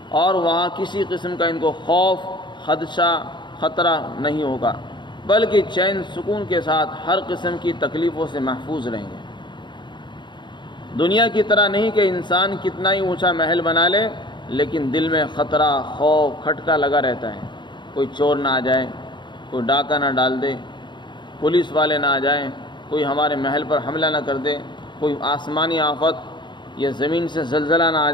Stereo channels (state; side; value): late; right; 0.22 ms